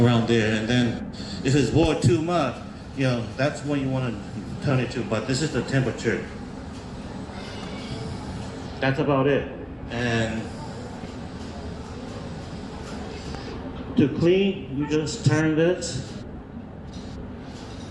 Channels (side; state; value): both; identical; correlation 1.00